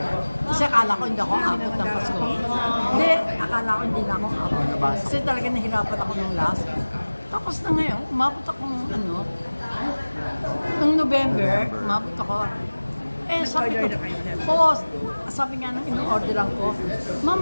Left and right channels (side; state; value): both; inverted; correlation -1.00